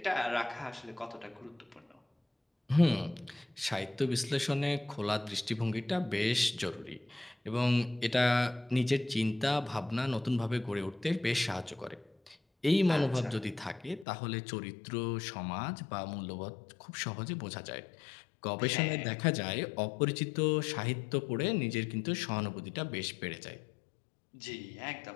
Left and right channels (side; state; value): right; drops out; at 14.1 s